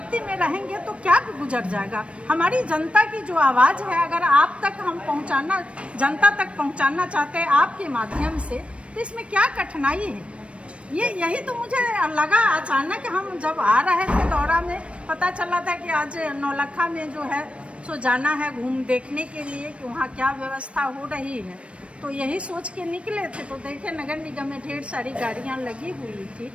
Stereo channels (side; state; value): left; late; 0.061 ms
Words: में रहेंगे तो क्या गुजर जाएगा। हमारी जनता की जो आवाज़ है, अगर आप तक हम पहुंचाना, जनता तक पहुंचाना चाहते हैं आपके माध्यम से, तो इसमें क्या कठिनाई है। यही तो मुझे लगा। अचानक हम जब आ रहे थे दौरा में, पता चला था कि आज नौलखा में जो है सो जाना है घूम देखने के लिए कि वहाँ क्या व्यवस्था हो रही है। तो यही सोच के निकले थे, तो देखे नगर निगम में ढेर सारी गाड़ियाँ लगी हुई थी,